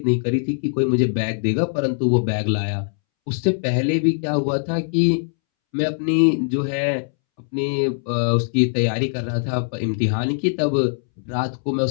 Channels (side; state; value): right; silent; 65 dB below the other